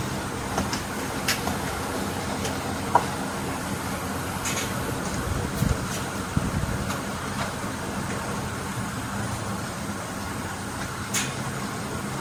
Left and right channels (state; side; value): identical; both; correlation 1.00